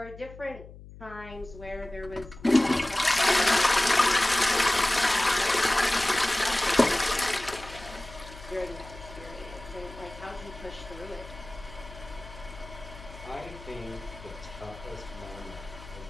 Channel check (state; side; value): noise; left; hum, 17 dB below the sound